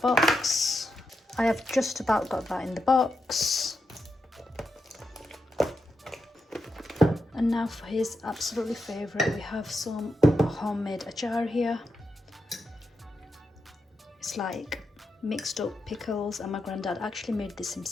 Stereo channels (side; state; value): both; normal; correlation 0.86